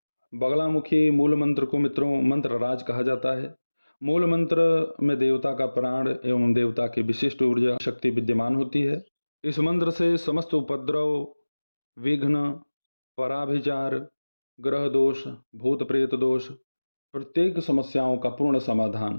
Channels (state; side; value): inverted; both; correlation -1.00